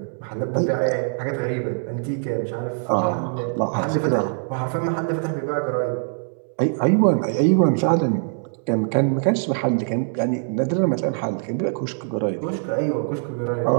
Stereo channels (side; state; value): left; silent; digital silence